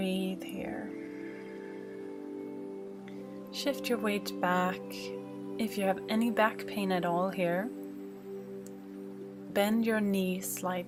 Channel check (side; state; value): both; identical; correlation 1.00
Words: here. Shift your weight back. If you have any back pain at all here, bend your knees